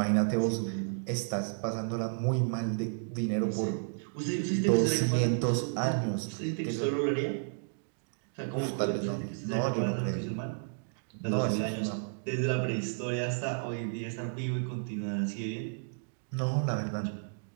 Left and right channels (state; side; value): silent; left; digital silence